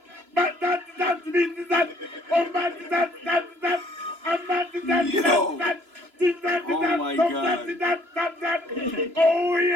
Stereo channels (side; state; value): left; late; 3.0 ms